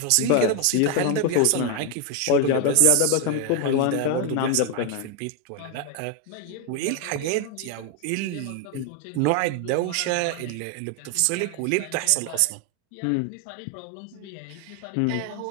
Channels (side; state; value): both; different; correlation 0.01